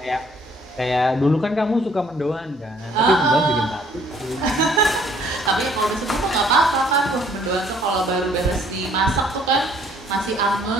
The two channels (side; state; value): both; normal; correlation 0.61